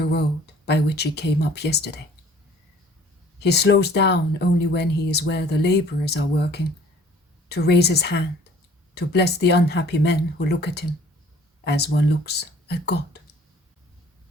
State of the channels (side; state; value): both; normal; correlation 0.53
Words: road by which he came up yesterday. He slows down only when he is where the laborers are working, to raise his hand, to bless the unhappy men who look at him, as one looks at God.